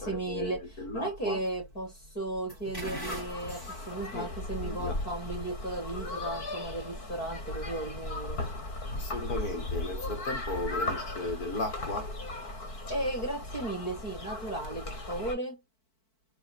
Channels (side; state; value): right; late; 4.5 ms